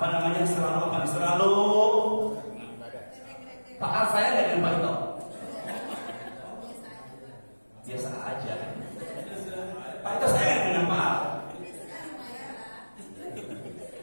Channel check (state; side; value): inverted; both; correlation -1.00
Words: namanya? Selalu Pak A saya nggak dengan Pak Ito. Biasa aja. Pak Ito saya nggak dengan Pak A.